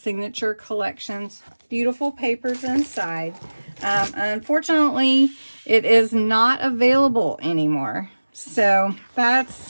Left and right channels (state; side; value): inverted; both; correlation -1.00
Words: collections. Beautiful papers inside. Unfortunately, it is not available anymore. So